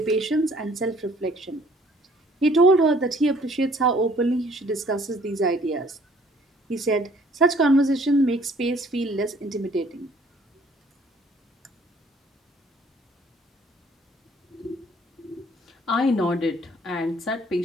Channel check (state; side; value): normal; both; correlation 0.59